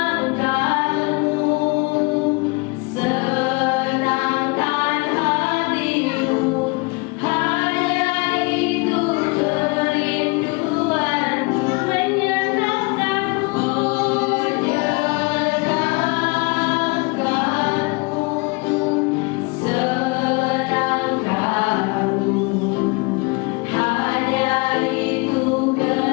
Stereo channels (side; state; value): right; quieter; 28.4 dB